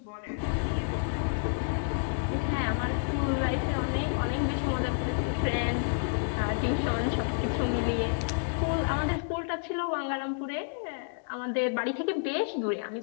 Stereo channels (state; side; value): silent; right; digital silence